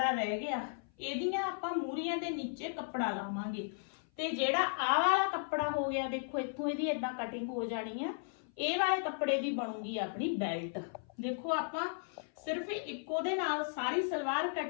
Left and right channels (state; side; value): silent; right; 54 dB below the other